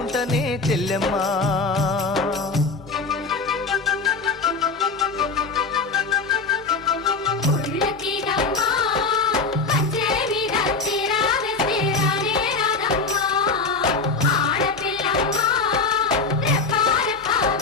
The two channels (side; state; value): right; quieter; 4.2 dB